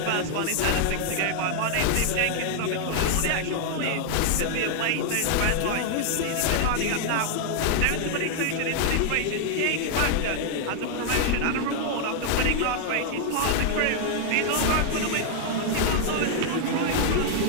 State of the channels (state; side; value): different; both; correlation 0.00